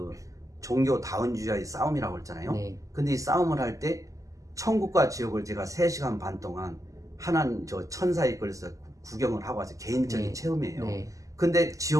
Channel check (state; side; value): late; left; 0.16 ms